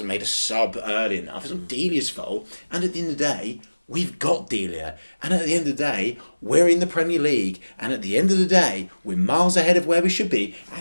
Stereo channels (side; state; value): both; inverted; correlation -1.00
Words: made a sub early enough. It's not Delia's fault. And at the end of the day, we've got Delia. And at the end of the day, we're in the Premier League. And at the end of the day, we're miles ahead of where we should be.